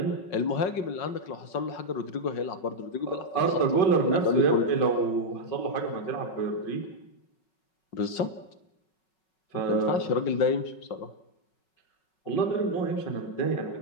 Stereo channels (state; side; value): late; right; 5.4 ms